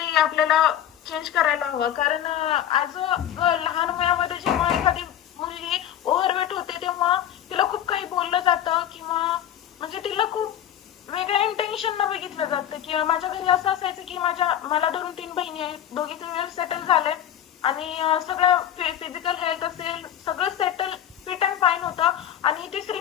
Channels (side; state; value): right; quieter; 10.7 dB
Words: आपल्याला चेंज करायला हवं। कारण ऍज अ लहान वयामध्ये जेव्हा एखादी मुलगी ओव्हरवेट होते तेव्हा तिला खूप काही बोललं जातं किंवा म्हणजे तिला खूप वेगळ्या इंटेन्शन न बघितलं जातं। की माझ्या घरी असं असायचं की मला 2-3 बहिणी आहेत, दोघी वेल सेटल झाले आणि सगळं फिजिकल हेल्थ असेल सगळं सेटल फिट अँड फाईन होतं। आणि तिसरी